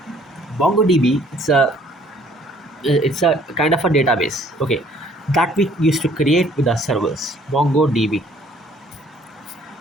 MongoDB, it's a kind of a database. Okay, that we used to create with our servers. MongoDB.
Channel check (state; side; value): normal; both; correlation 0.59